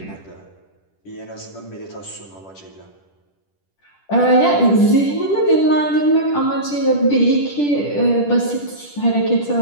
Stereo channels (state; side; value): late; right; 10 ms